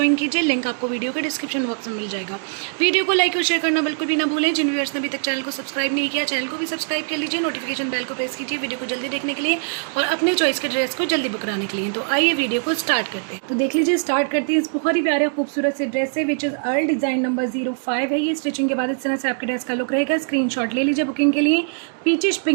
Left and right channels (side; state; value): left; silent; digital silence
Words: कीजिए। लिंक आपको वीडियो के डिस्क्रिप्शन बॉक्स में मिल जाएगा। वीडियो को लाइक और शेयर करना बिल्कुल भी ना भूलें। जिन व्यूअर्स ने अभी तक चैनल को सब्सक्राइब नहीं किया, चैनल को भी सब्सक्राइब कर लीजिए। नोटिफिकेशन बेल को प्रेस कीजिए वीडियो को जल्दी देखने के लिए और अपने चॉइस के ड्रेस को जल्दी बुक कराने के लिए। तो आइए वीडियो को स्टार्ट करते हैं। तो देख लीजिए, स्टार्ट करते हैं इस बहुत ही प्यारे खूबसूरत से ड्रेस से, which is earl design number 05 है। ये स्टिचिंग के बाद इस तरह से आपके ड्रेस का लुक रहेगा। स्क्रीनशॉट ले लीजिए बुकिंग के लिए। पीचिश